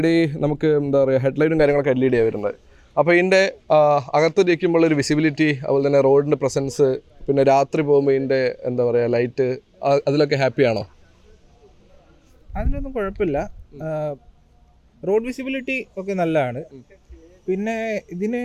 നമുക്ക് എന്താ പറയുക, ഹെഡ്ലൈറ്റും കാര്യങ്ങളൊക്കെ LED ആണ് വരുന്നത്. അപ്പോൾ ഇതിൻ്റെ അകത്ത് ഇരിക്കുമ്പോൾ ഒരു വിസിബിലിറ്റി, അതുപോലെ തന്നെ റോഡിൻ്റെ പ്രസൻസ്, പിന്നെ രാത്രി പോകുമ്പോൾ ഇതിൻ്റെ എന്താ പറയുക ലൈറ്റ്, അതിലൊക്കെ ഹാപ്പിയാണോ? അതിലൊന്നും കുഴപ്പമില്ല. റോഡ് വിസിബിലിറ്റി ഒക്കെ നല്ലതാണ്. പിന്നെ ഇതിന്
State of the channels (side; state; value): both; identical; correlation 1.00